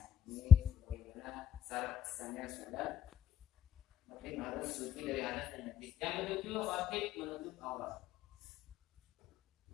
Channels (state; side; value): quieter; right; 9.0 dB